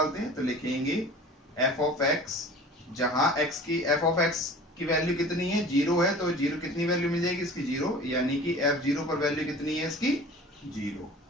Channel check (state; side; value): normal; both; correlation 0.42